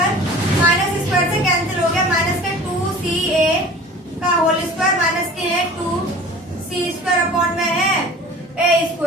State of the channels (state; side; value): normal; both; correlation 0.42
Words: माइनस स्क्वायर से कैंसिल हो गया, माइनस के 2 सी ए का होल स्क्वायर माइनस के है 2 सी स्क्वायर अपॉन में है ए